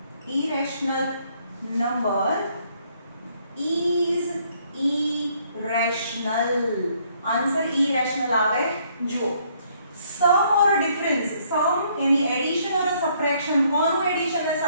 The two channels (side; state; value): both; inverted; correlation -0.67